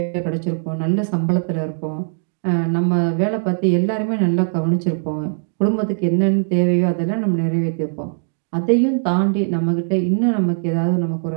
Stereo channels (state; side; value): silent; left; digital silence